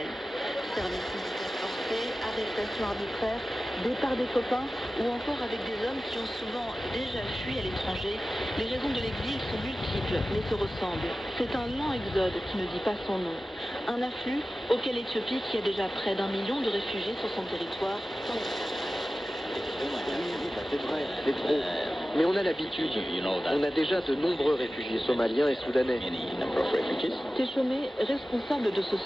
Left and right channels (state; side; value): normal; both; correlation 0.95